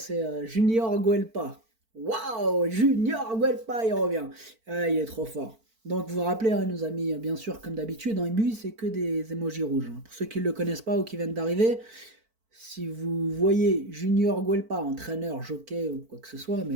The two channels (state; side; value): late; left; 4.5 ms